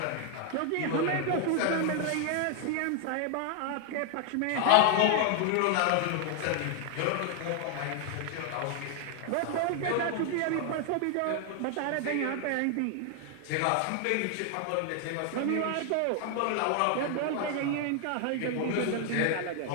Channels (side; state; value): both; different; correlation 0.00